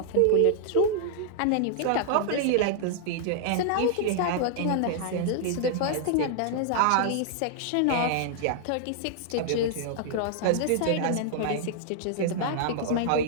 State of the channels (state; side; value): different; both; correlation 0.00